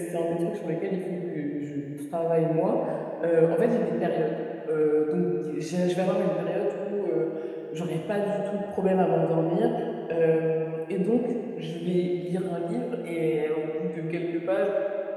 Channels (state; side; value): identical; both; correlation 1.00